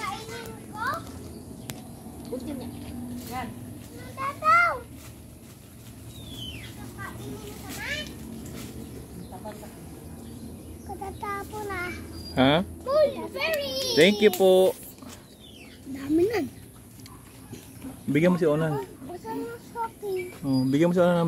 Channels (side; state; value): both; identical; correlation 1.00